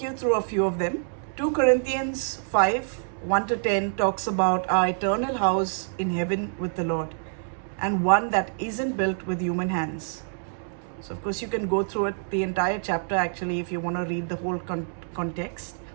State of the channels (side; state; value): left; silent; digital silence